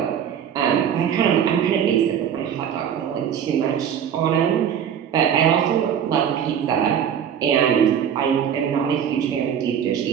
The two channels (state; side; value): quieter; left; 8.7 dB